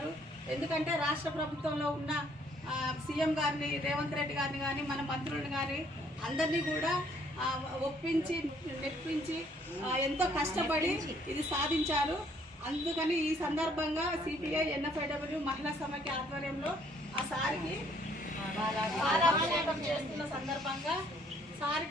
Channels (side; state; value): both; normal; correlation 0.64